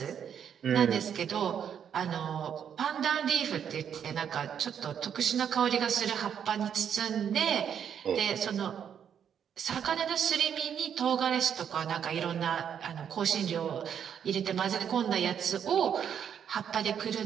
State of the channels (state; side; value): quieter; left; 8.4 dB